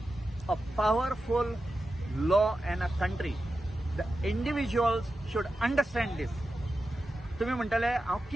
a powerful law in a country. The individuals should understand दीस. तुमी म्हणटले हांव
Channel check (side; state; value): both; normal; correlation 0.91